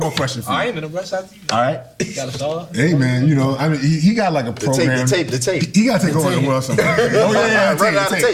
more question for you. I ain't in a rush after you. All right. Got a star? Hey, man, I mean, he got like a program. The tape. He got to take over the world somewhere. Oh, yeah.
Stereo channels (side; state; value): both; identical; correlation 1.00